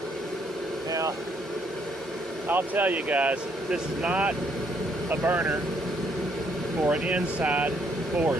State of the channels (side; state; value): both; normal; correlation 0.70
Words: Now, I'll tell you guys, this is not a burner for an inside